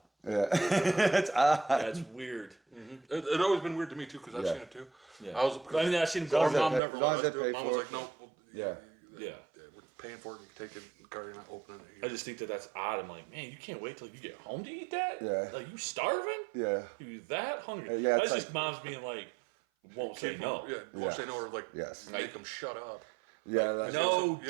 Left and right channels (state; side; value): drops out; left; at 6.8 s